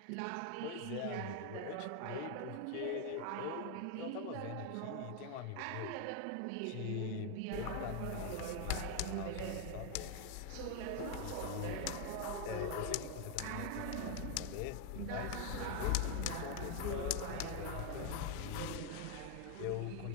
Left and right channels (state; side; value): different; both; correlation 0.01